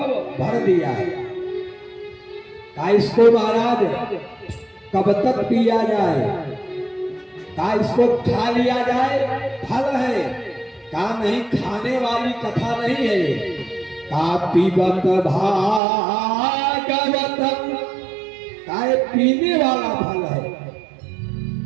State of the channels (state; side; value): drops out; left; at 15.8 s